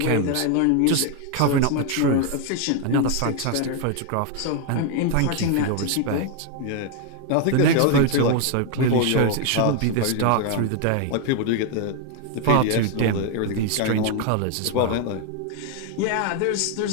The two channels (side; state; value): both; different; correlation 0.01